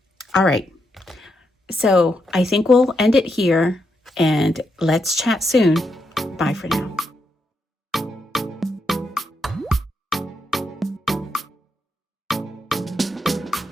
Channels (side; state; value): both; normal; correlation 0.81